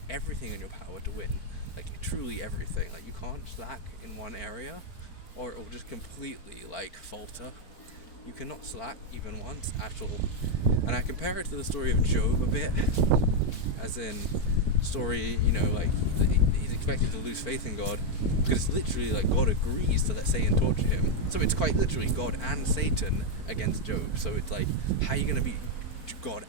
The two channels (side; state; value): right; late; 4.5 ms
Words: everything in your power to win, like, truly everything. Like, you can't slack in one area, or it will just completely, like, falter. You cannot slack even once at all. And I compare it to the story of Job a bit, as in story, you know, like, he's expected to lose faith in God, because it's literally like God agrees to let Satan torture him. So it's quite literally God and Satan against Job. So it's like, how are you going to beat God